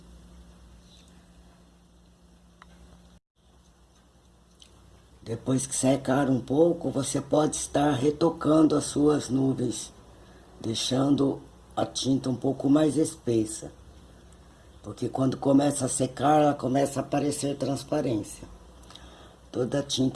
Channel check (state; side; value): identical; both; correlation 1.00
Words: Depois que secar um pouco, você pode estar retocando as suas nuvens, deixando a tinta um pouco mais espessa. Porque quando começa a secar, ela começa a aparecer transparência. Toda